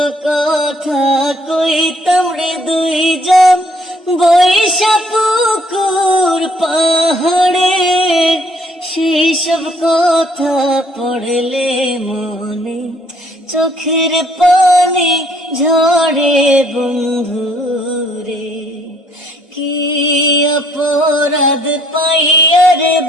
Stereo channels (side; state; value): both; normal; correlation 0.64